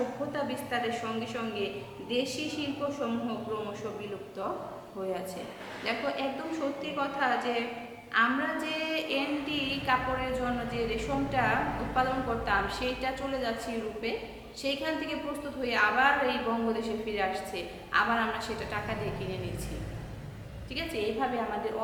বিস্তারের সঙ্গে সঙ্গে দেশি শিল্পসমূহ ক্রমশ বিলুপ্ত হইয়াছে। দেখো, একদম সত্যি কথা যে আমরা যে এন্ডি কাপড়ের জন্য যে রেশমটা উৎপাদন করতাম, সেইটা চলে যাচ্ছে ইউরোপে, সেইখান থেকে প্রস্তুত হয়ে আবার এই বঙ্গদেশে ফিরে আসছে, আবার আমরা সেটা টাকা দিয়ে কিনে নিচ্ছি। ঠিক আছে, এইভাবে আমাদের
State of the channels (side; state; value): both; identical; correlation 1.00